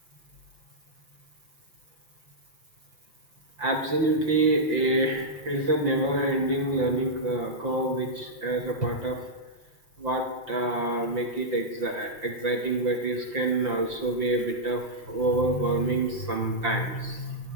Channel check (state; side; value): late; left; 5.8 ms